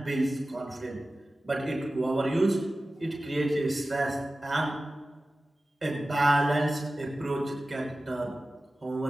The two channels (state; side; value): normal; both; correlation 0.95